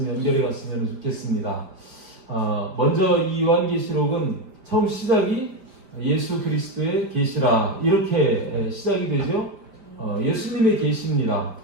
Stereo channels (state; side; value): late; left; 5.0 ms